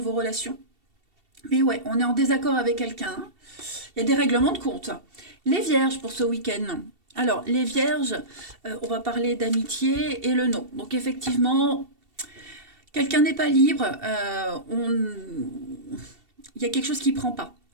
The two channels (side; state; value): left; late; 2.7 ms